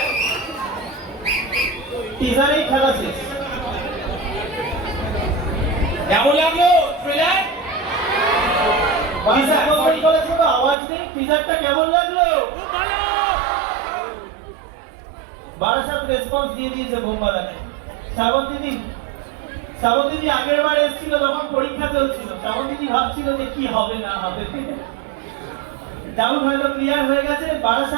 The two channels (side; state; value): left; drops out; at 10.8 s